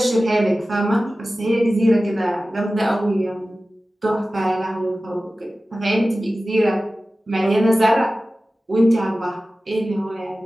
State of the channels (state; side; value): normal; both; correlation 0.96